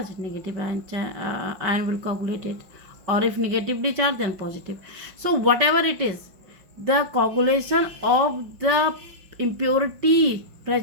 negative ion will coagulate it. Or if negatively charged, then positive. So whatever it is, the coagulation of the impurity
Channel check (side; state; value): left; late; 5.6 ms